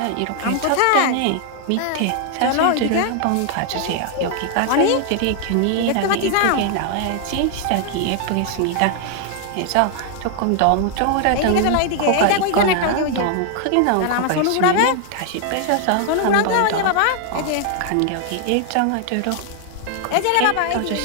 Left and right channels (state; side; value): different; both; correlation 0.00